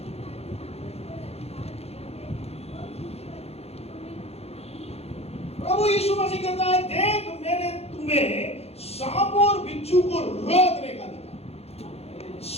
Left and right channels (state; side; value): late; right; 0.30 ms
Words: प्रभु यीशु मसीह कहता है, देख मैंने तुम्हें सांप और बिच्छू को रोकने का दिया।